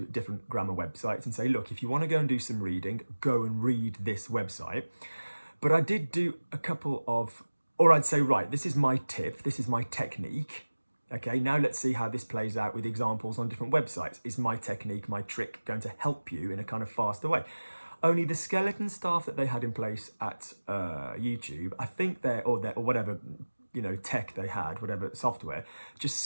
different grammar websites and say, look, if you want to go and do some reading, go and read this website. But I did do a couple of, or I'd say, right, this is my tip, this is my technique. Okay, now let's see how this plays out with examples on different websites. Is my technique, my trick going to help you in a kind of faster way? Only the skeleton staff that they had in place at YouTube, I think or whatever, you know, tech they had, whatever software, just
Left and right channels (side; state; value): both; inverted; correlation -1.00